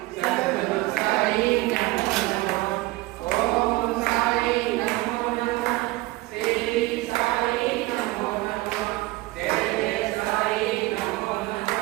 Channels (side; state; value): left; quieter; 19.9 dB